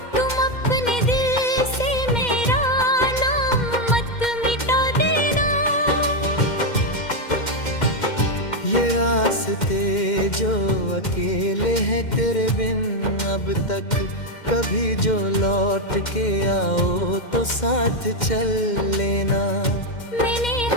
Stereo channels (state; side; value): late; right; 2.1 ms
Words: तुम अपने दिल से मेरा नाम मत मिटा देना। रास्ते जो अकेले हैं तेरे बिन अब तक कभी जो लौट के आओ तो साथ चल लेना। मैंने